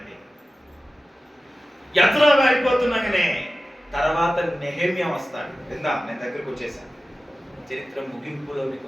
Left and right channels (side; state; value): both; normal; correlation 0.95